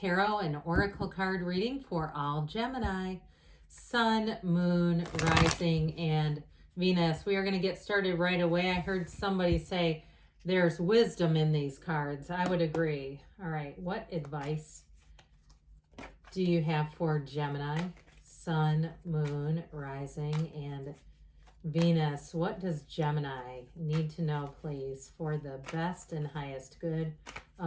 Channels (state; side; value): identical; both; correlation 1.00